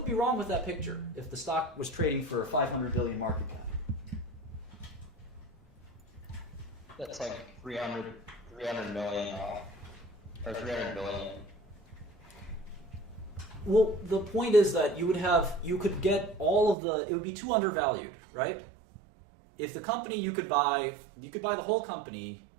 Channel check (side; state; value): left; drops out; at 16.8 s